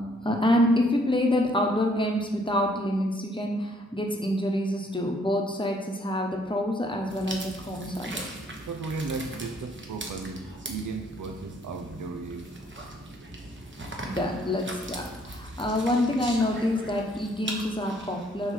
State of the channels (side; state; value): both; normal; correlation 0.65